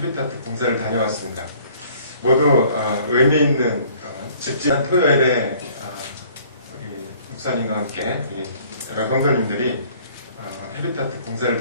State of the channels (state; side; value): inverted; both; correlation -0.56